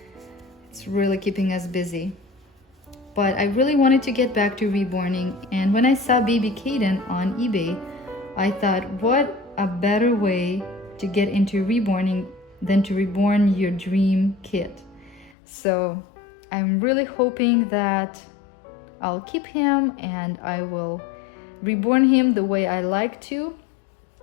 it's really keeping us busy. But I really wanted to get back to reborning, and when I saw baby Keyden on eBay, I thought, what a better way to get into reborning than to reborn your dream kit. So I'm really hoping that I'll keep him and I will reborn him the way I like to.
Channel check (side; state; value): right; drops out; at 15.4 s